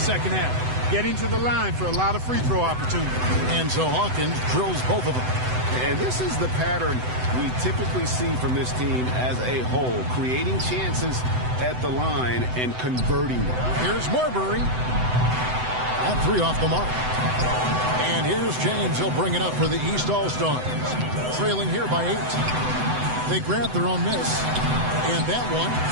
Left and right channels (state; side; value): late; left; 7.9 ms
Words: half. Getting to the line for a lot of free throw opportunities. And so Hawkins drills both of them. And this is the pattern we typically see from this team as a whole. Creating chances at the line and converting them. Here's Marbury. That 3 off the mark. And here's James. He'll bring it up for the East All-Stars. Trailing here by 8. They grab their own miss. And that one,